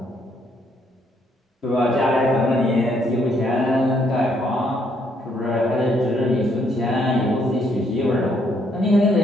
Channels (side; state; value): both; normal; correlation 0.71